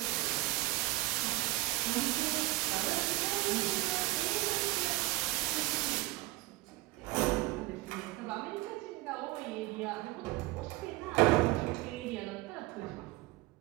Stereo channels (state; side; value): quieter; left; 19.3 dB